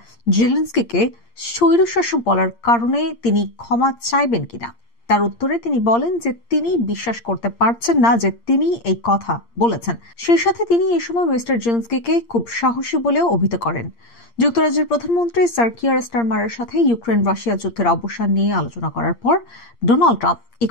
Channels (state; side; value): late; right; 8.6 ms